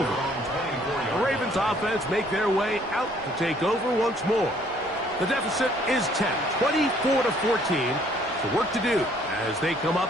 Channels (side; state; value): both; normal; correlation 0.62